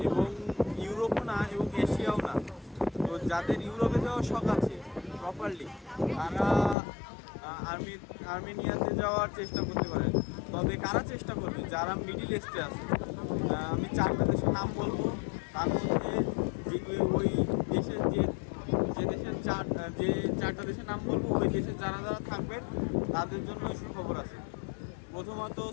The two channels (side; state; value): right; drops out; at 6.8 s